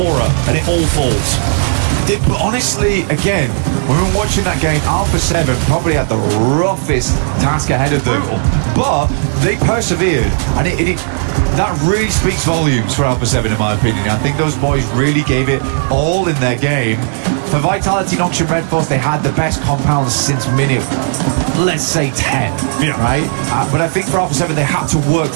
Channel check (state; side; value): silent; left; digital silence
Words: and it all falls. But honestly, again, when we were watching that game, Alpha 7 probably had the roughest task ahead of them. But they persevered, and that really speaks volumes for Alpha 7 in my opinion. I think those boys really gave it all in their game. For Vitality, Nonshin Red Force, they had the best compounds since minute, let's say 10, yeah. Right? But I think for Alpha 7, they had to work